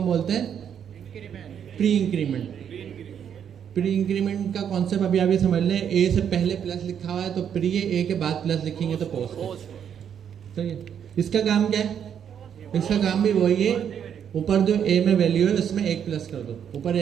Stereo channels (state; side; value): quieter; left; 8.5 dB